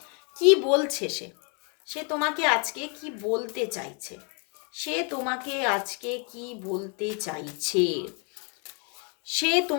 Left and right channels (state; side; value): quieter; right; 36.4 dB